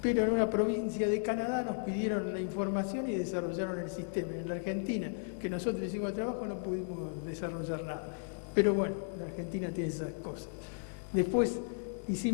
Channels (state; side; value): silent; right; digital silence